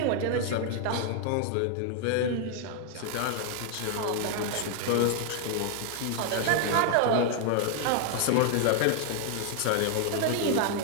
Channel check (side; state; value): both; different; correlation 0.00